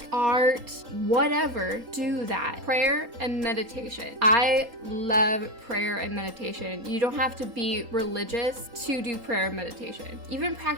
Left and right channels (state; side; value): late; left; 4.2 ms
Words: art, whatever, do that. Prayer and meditation. I love prayer and meditation. You don't have to be religious to do prayer and meditation. Even